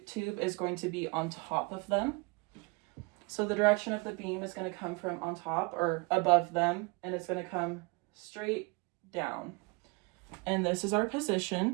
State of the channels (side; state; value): left; quieter; 28.1 dB